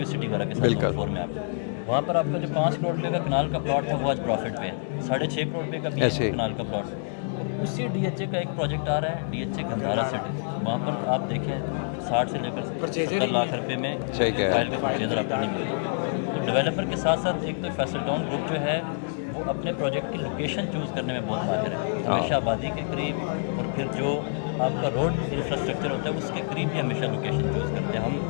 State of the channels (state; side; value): silent; right; digital silence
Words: سٹی وغیرہ کے ساتھ زون 4 میں. آپ وہاں پر آپ کا جو 5 کروڑ روپے کا کنال کا پلاٹ تھا وہ آج پروفٹ پہ ہے, 6.5 کروڑ روپے کا بھی ہے کنال کا پلاٹ. اور اسی ڈی ایچ اے کا ایک پروجیکٹ آ رہا ہے, D H A Gandhara city, وہاں پر آپ دیکھیں 60 سے لے کر 70 لاکھ روپے میں فائل کا پرچیزر آپ کو نہیں ملتا. تو ڈیولپر کے ساتھ ساتھ ایک تو فیصل ٹاؤن گروپ جو ہے وہ اپنے پروجیکٹ کی لوکیشن چوز کرنے میں بہت ماہر ہے, ہمیشہ آبادی کے قریب, اور پھر جو آپ کا روڈ انفراسٹرکچر ہوتا ہے اس کے قریب بھی ہمیشہ لوکیشن چوز کرتے ہیں. ہم